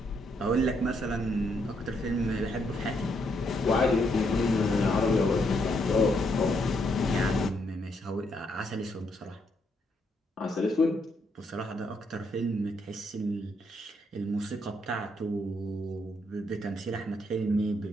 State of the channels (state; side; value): normal; both; correlation 0.75